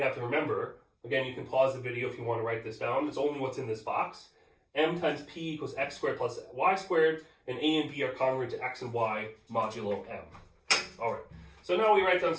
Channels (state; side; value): identical; both; correlation 1.00